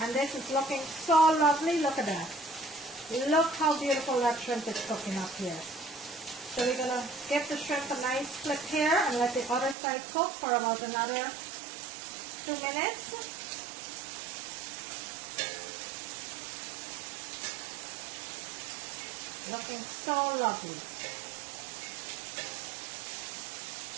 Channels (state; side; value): drops out; left; at 9.8 s